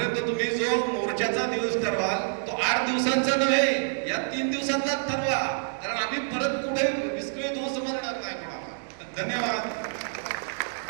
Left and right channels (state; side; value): silent; left; digital silence